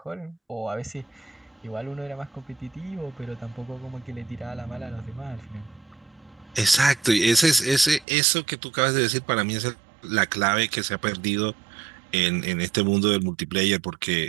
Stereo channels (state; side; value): drops out; left; at 8.1 s